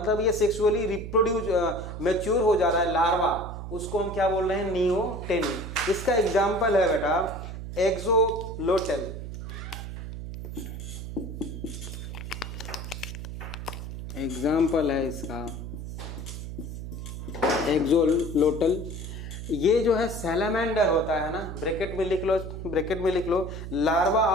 ये सेक्सुअली रिप्रोड्यूस मैच्योर हो जा रहा है लार्वा, उसको हम क्या बोल रहे हैं, नियोटेनिन। इसका एग्जाम्पल है बेटा एक्सोलोटल। एग्जाम्पल है इसका एक्सोलोटल। ये जो है सैलामेंडर होता है ना, ब्रैकेट में लिख लो लार्वा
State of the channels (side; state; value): right; noise; hum, 8 dB below the sound